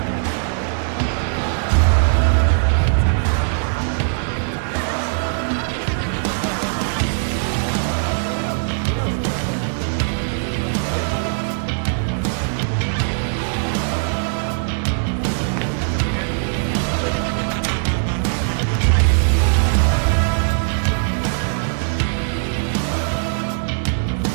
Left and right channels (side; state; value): left; silent; digital silence